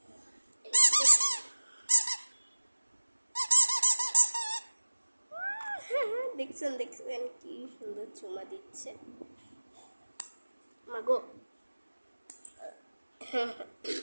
দেখছেন দেখছেন কি সুন্দর চুমা দিচ্ছে মাগো।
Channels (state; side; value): inverted; both; correlation -1.00